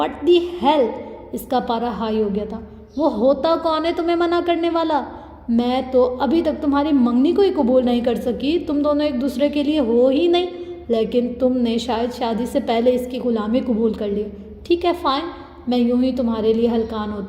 دی ہیل، اس کا پارا ہائی ہو گیا تھا۔ وہ ہوتا کون ہے تمہیں منع کرنے والا؟ میں تو ابھی تک تمہاری منگنی کو ہی قبول نہیں کر سکی، تم دونوں ایک دوسرے کے لیے ہو ہی نہیں، لیکن تم نے شاید شادی سے پہلے اس کی غلامی قبول کر لی۔ ٹھیک ہے فائن، میں یوں ہی تمہارے لیے ہلکان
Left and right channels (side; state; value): both; identical; correlation 1.00